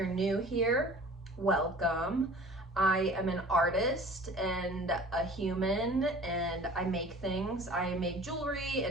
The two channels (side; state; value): both; normal; correlation 0.45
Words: new here, welcome. I am an artist and a human and I make things. I make jewelry